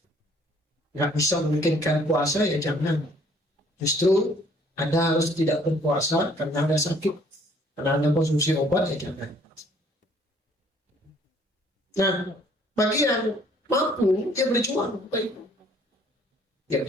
nggak bisa memikirkan puasa, ya jangan. Justru Anda harus tidak berpuasa karena Anda sakit, karena Anda konsumsi obat, ya jangan. Nah, bagi yang mampu, dia berjuang. Ya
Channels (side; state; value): both; normal; correlation 0.60